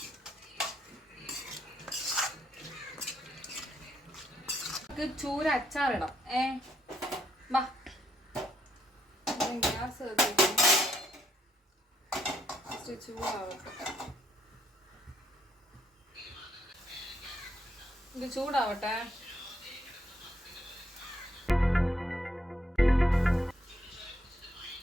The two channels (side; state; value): both; normal; correlation 0.74